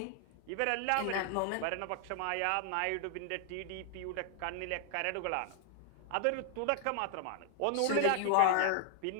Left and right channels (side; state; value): both; different; correlation 0.00